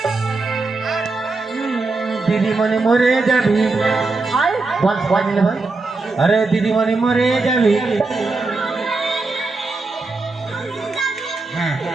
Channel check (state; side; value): quieter; left; 3.6 dB